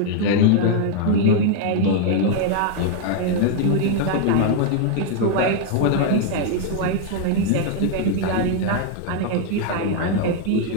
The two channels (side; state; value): both; different; correlation 0.00